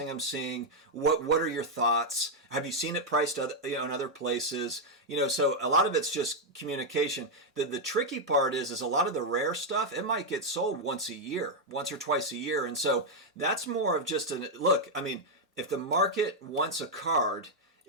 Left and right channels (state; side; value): normal; both; correlation 0.00